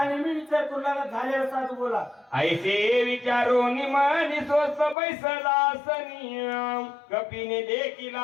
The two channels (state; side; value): drops out; right; at 5.0 s